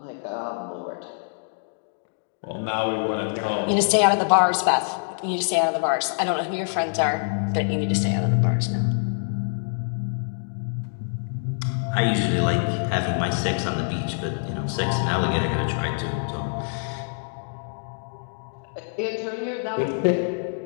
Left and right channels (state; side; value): silent; right; digital silence